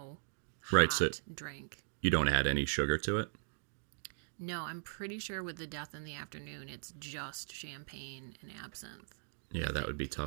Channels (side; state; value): left; silent; digital silence